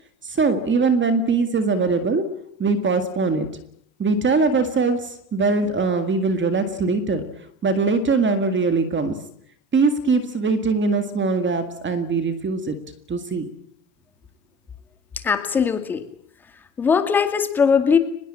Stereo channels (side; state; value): both; normal; correlation 0.37